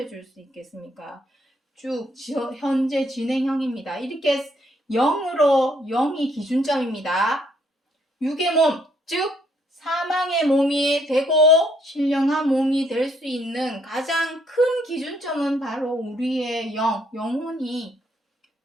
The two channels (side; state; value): both; normal; correlation 0.69